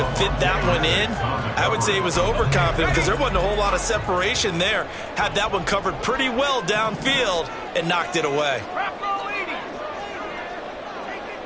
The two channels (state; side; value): identical; both; correlation 1.00